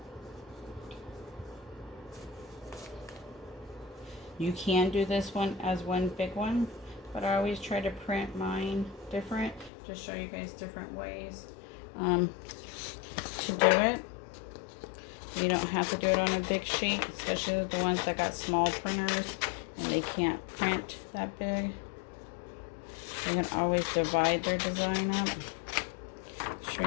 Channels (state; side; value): drops out; right; at 9.7 s